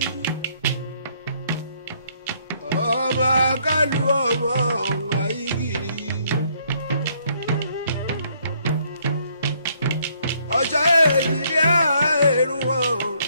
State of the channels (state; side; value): inverted; both; correlation -0.67